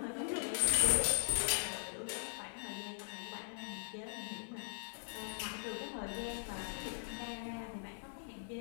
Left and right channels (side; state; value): right; silent; 51 dB below the other